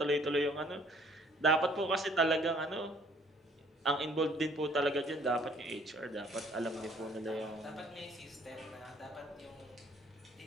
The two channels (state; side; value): normal; both; correlation 0.59